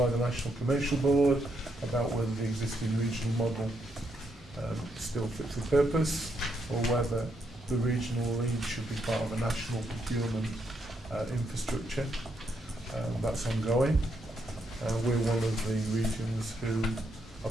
the National Commercial Board about whether the existing regional model still fit for purpose, or whether the regional lead should be part of a national procurement infrastructure. That's ongoing. We're one of the regions who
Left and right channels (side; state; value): both; normal; correlation 0.78